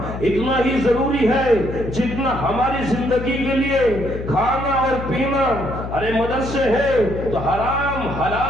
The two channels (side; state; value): left; noise; hum, 8 dB below the sound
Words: اتنا ہی ضروری ہے جتنا ہماری زندگی کے لیے کھانا اور پینا۔ ارے مدرسے ہیں تو حرام